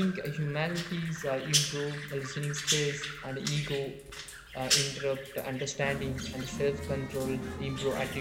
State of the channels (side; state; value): both; identical; correlation 1.00